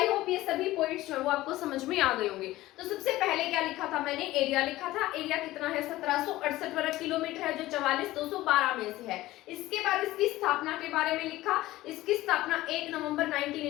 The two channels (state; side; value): quieter; right; 16.9 dB